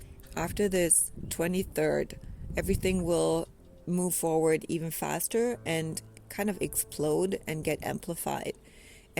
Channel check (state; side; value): identical; both; correlation 1.00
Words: after this 23rd, everything will move forward even faster and kind of explode and get amplified.